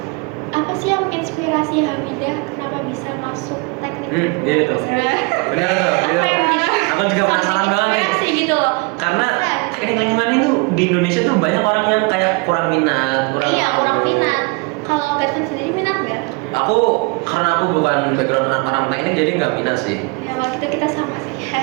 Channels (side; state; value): left; quieter; 29.5 dB